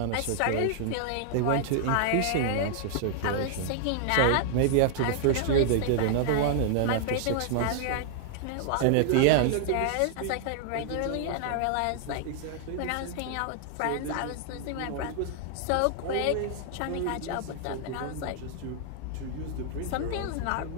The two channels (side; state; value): both; different; correlation -0.01